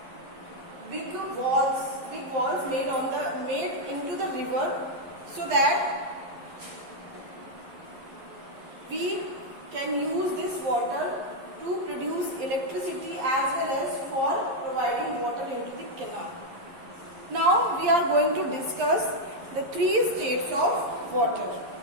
big walls made into the river so that we can use this water to produce electricity as well as for providing water into the canal. Now we are going to discuss the 3 states of water.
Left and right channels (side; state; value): left; late; 11 ms